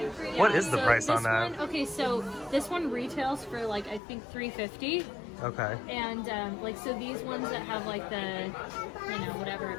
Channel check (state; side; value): drops out; right; at 4.0 s